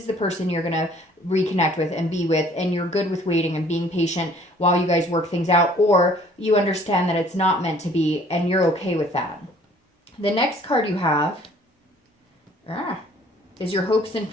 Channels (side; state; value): both; normal; correlation 0.56